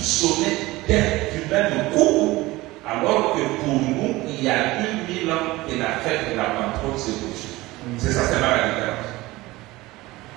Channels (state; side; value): quieter; left; 19.6 dB